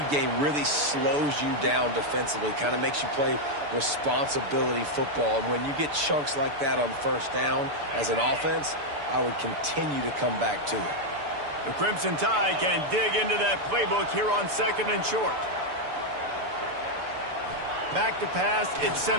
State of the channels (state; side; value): late; left; 6.9 ms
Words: game really slows you down defensively, kind of makes you play responsibility football. And when you get chunks like that on first down as an offense, I would continue to come back to it. The Crimson Tide can dig into that playbook here on second and short. Back to pass, it's